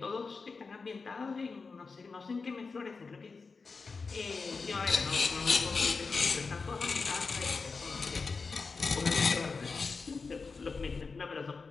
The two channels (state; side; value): quieter; right; 4.5 dB